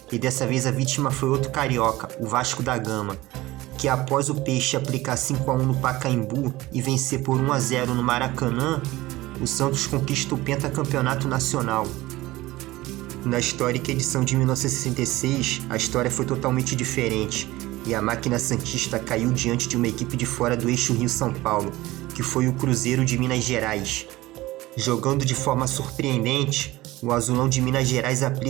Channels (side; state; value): left; quieter; 18.5 dB